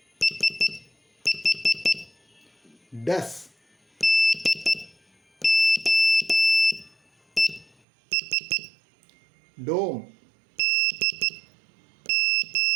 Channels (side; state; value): left; drops out; at 7.8 s